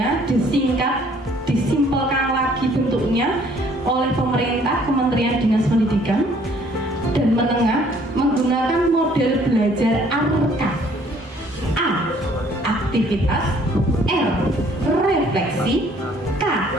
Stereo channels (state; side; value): normal; both; correlation 0.60